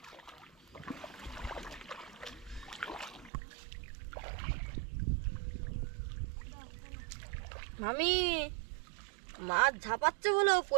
মামি মাছ ঝাপাচ্ছে বলো,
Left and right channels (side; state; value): left; drops out; at 3.3 s